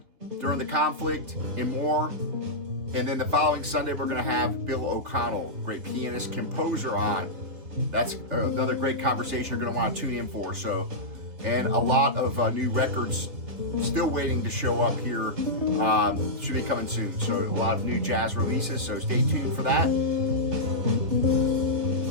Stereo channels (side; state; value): left; late; 3.5 ms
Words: during the conflict, and more. And then the following Sunday, we're gonna have Bill O'Connell, great pianist, composer, on. That's another great conversation you're gonna want to tune in for. So, and a lot of new records still waiting to show up here. Should be coming soon. So a lot of new jazz releases. So stay tuned for that.